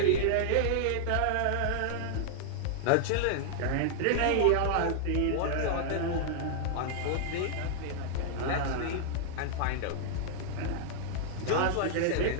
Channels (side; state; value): both; different; correlation -0.01